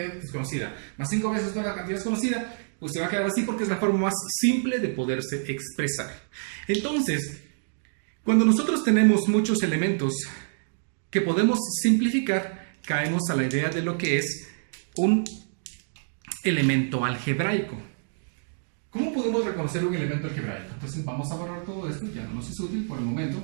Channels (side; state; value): left; silent; digital silence